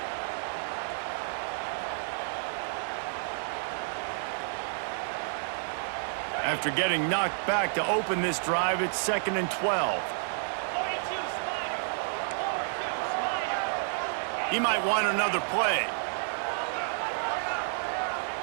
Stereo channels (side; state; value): left; silent; digital silence